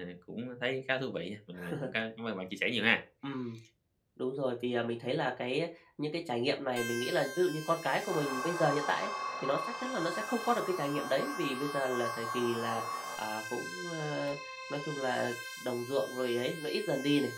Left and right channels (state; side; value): identical; both; correlation 1.00